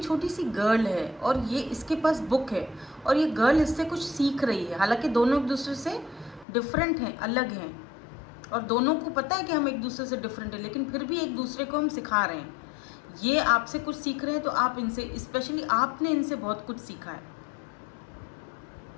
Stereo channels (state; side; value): drops out; right; at 6.5 s